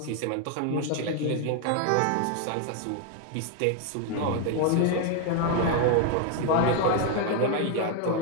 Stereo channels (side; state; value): both; different; correlation 0.01